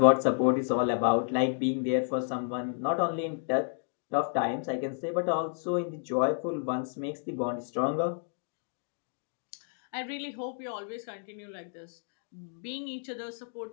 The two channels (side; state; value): right; silent; digital silence